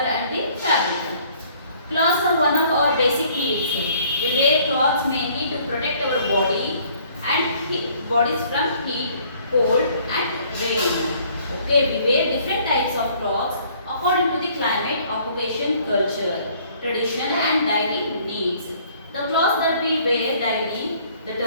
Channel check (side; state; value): both; inverted; correlation -0.59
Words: and the fabric. Clothes are one of our basic needs. We wear clothes mainly to protect our body and bodies from heat, cold and rain. Okay, we wear different types of clothes according to the climate, occupation, culture, tradition and daily needs. The clothes that we wear daily, the